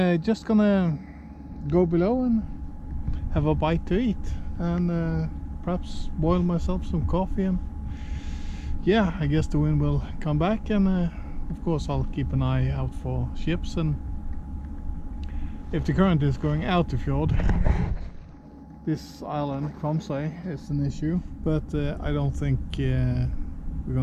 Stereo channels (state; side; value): identical; both; correlation 1.00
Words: just gonna go below and have a bite to eat, and perhaps boil myself some coffee, and yeah, I guess the wind will come back, and of course I'll keep an eye out for ships, and if the current is going out the fjord, this island, Kinsarvik, is an issue, but I don't think we're